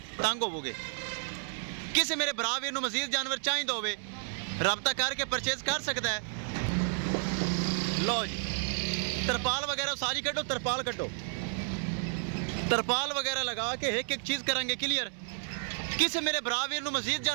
तंग होवोगे। किसे मेरे भरा वीर नो मजीद जानवर चाहिए होवे, राबता करके परचेज कर सकता है। लो जी तरपाल वगैरह सारी कटो, तरपाल कटो, तरपाल वगैरह लगा के एक एक चीज करेंगे क्लियर। किसी मेरे भरा वीर ਨੂੰ मजीद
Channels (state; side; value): silent; left; 57 dB below the other